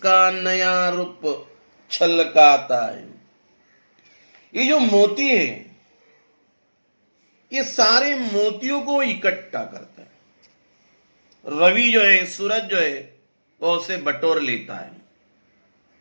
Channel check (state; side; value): inverted; both; correlation -1.00